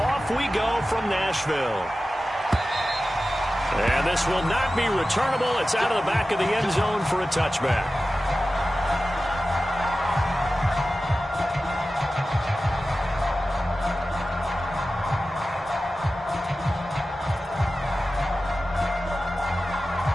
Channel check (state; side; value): normal; both; correlation 0.95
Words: we go from Nashville. And this will not be returnable. It's out of the back of the end zone for a touchback.